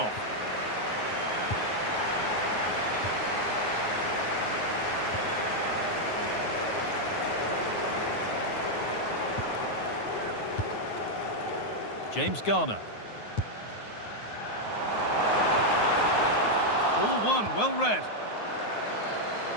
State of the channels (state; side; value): late; right; 9.5 ms